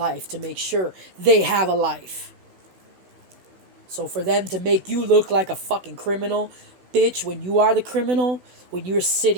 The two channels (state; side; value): late; left; 16 ms